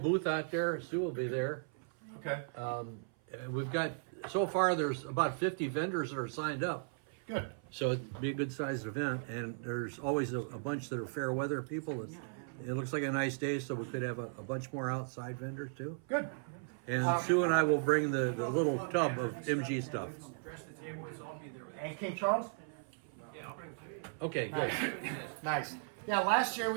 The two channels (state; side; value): silent; left; 53 dB below the other